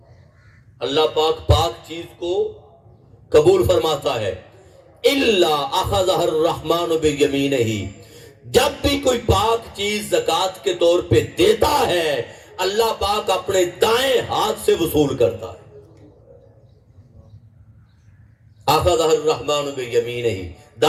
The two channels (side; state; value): both; identical; correlation 1.00